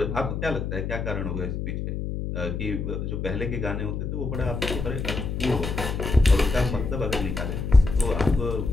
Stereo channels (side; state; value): left; noise; hum, 3 dB below the sound